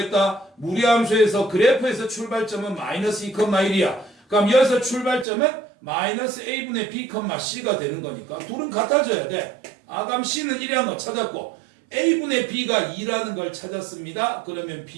무리함수에서 그래프에서 출발점은 마이너스 2,1이야. 그럼 여기서 출발점은 마이너스 A분의 B, C가 되는 거니까 둘은 같아져야 돼. 아, 그럼 C는 1이라는 거 찾았고 A분의 B가 2라는 걸 찾았습니다. 그러면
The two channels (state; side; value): drops out; left; at 5.2 s